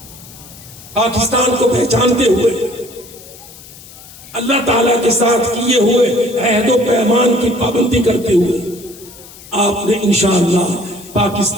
پاکستان کو پہچانتے ہوئے، اللہ تعالیٰ کے ساتھ کیے ہوئے عہد و پیمان کی پابندی کرتے ہوئے آپ نے انشاءاللہ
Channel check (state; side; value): noise; left; hiss, 19 dB below the sound